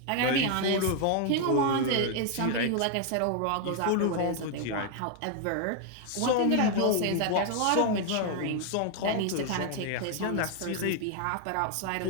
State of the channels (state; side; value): different; both; correlation 0.00